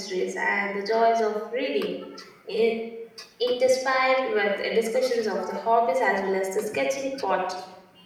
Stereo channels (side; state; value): both; identical; correlation 1.00